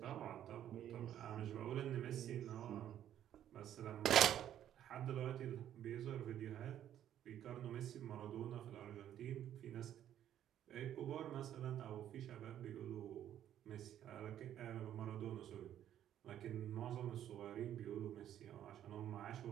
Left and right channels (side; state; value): left; quieter; 11.0 dB